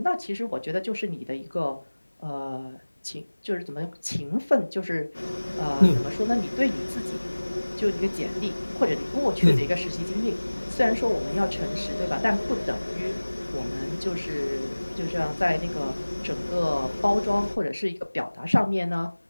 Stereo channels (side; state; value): both; inverted; correlation -1.00